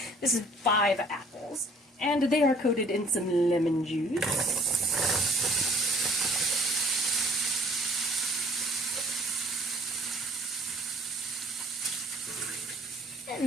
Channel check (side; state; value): both; normal; correlation 0.55